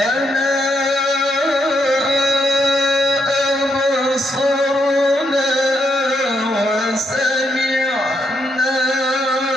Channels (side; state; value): both; normal; correlation 0.77